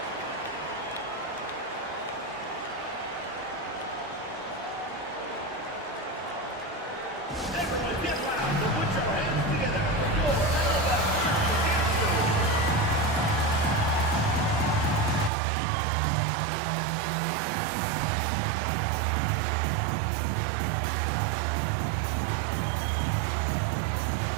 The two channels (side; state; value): left; drops out; at 15.3 s